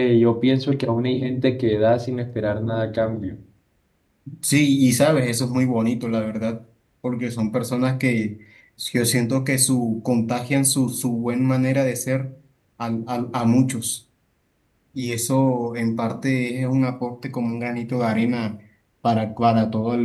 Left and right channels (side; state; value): both; identical; correlation 1.00